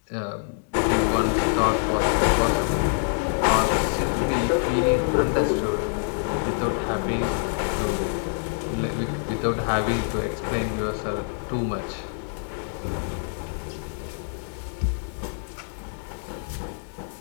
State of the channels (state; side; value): silent; right; digital silence